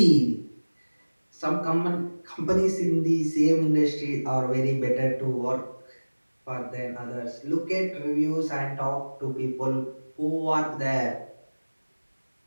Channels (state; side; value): inverted; both; correlation -1.00